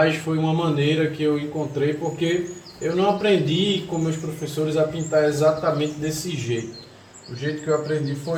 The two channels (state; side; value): identical; both; correlation 1.00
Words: foi uma maneira que eu encontrei, porque eu não aprendi com meus professores a pintar exatamente desse jeito. O jeito que eu aprendi